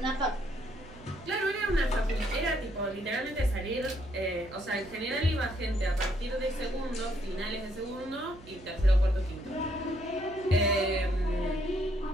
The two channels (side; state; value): right; noise; hum, 19 dB below the sound